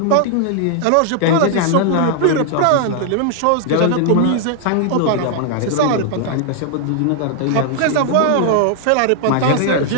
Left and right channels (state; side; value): different; both; correlation 0.00